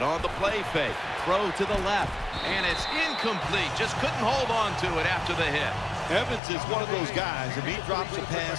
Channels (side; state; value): right; drops out; at 6.4 s